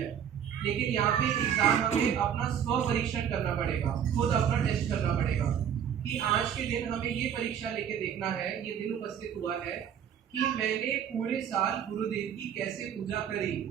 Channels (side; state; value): left; quieter; 8.8 dB